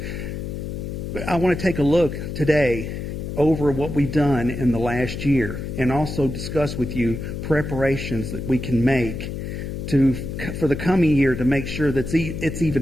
But I want to take a look today over what we've done in the last year and also discuss with you preparations that we can make for the coming year to make sure that it's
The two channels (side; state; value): left; noise; hum, 6 dB below the sound